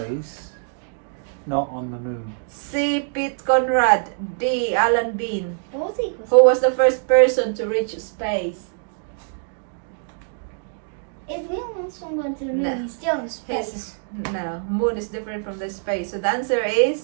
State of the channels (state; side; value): silent; left; digital silence